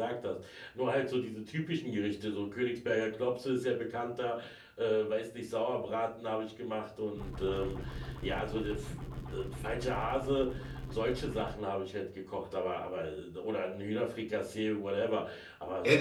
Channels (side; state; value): both; identical; correlation 1.00